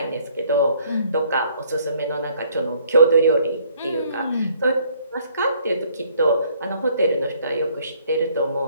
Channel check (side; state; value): both; inverted; correlation -0.63